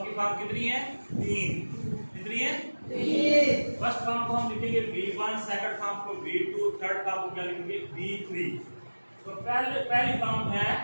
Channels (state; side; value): inverted; both; correlation -1.00